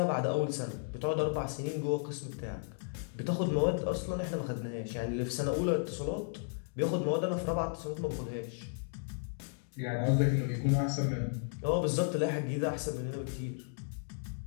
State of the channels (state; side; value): silent; right; digital silence